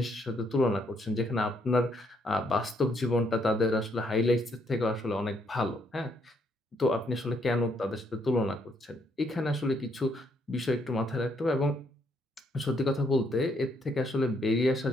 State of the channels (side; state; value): both; normal; correlation 0.72